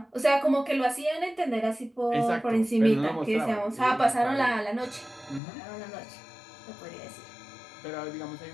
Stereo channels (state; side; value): drops out; right; at 5.4 s